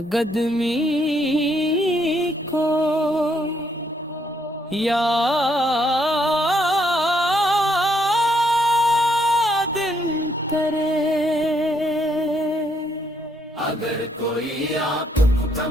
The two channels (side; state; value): both; normal; correlation 0.72